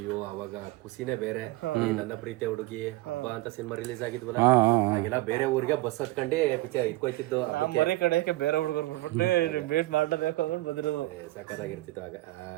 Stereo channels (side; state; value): left; quieter; 19.3 dB